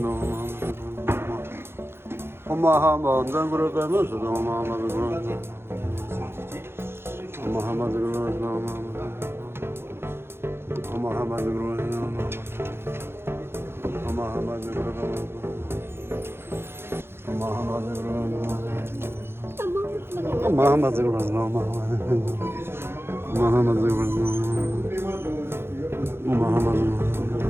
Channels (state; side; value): late; left; 0.11 ms